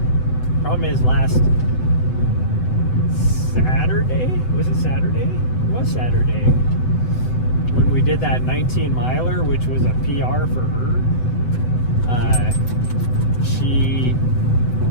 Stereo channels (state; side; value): late; right; 7.9 ms